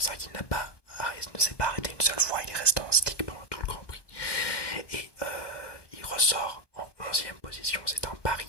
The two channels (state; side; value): late; right; 1.2 ms